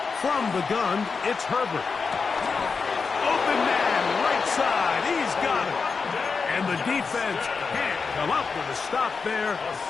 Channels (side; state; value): right; quieter; 5.0 dB